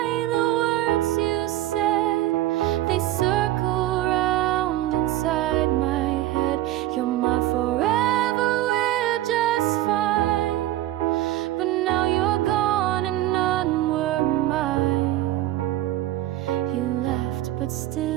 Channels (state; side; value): quieter; left; 14.7 dB